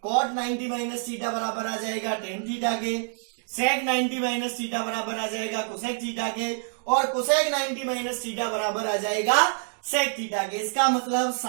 cot 90 माइनस थीटा बराबर आ जाएगा tan थीटा के, sec 90 माइनस थीटा बराबर आ जाएगा cosec थीटा के, और cosec 90 माइनस थीटा बराबर आ जाएगा sec थीटा के। इसका मतलब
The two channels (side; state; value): left; silent; 60 dB below the other